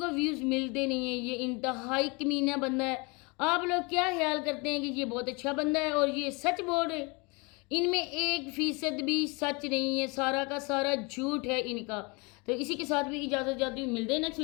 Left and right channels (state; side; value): quieter; right; 29.0 dB